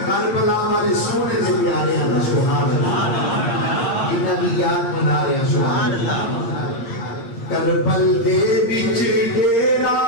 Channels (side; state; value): right; late; 8.6 ms